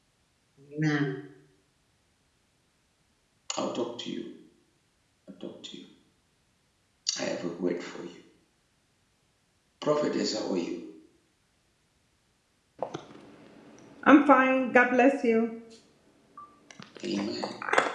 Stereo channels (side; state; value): both; identical; correlation 1.00